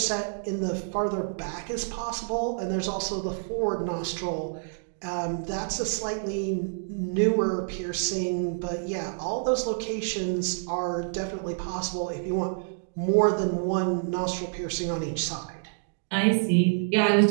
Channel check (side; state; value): left; silent; digital silence